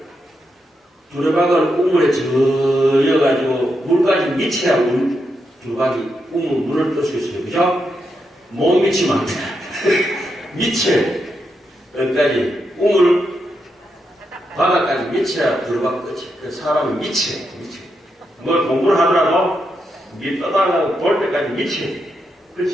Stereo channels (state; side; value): normal; both; correlation 0.83